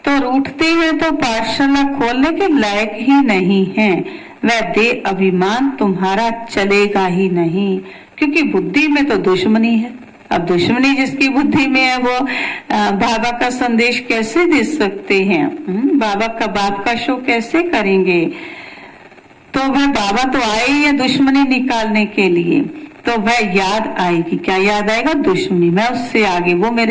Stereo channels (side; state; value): both; identical; correlation 1.00